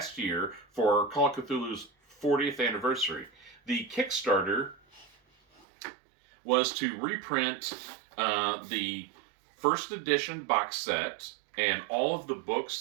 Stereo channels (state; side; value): drops out; left; at 5.7 s